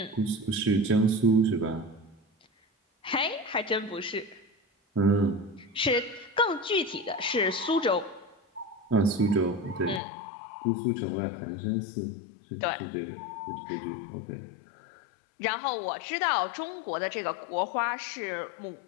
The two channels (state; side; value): drops out; right; at 10.0 s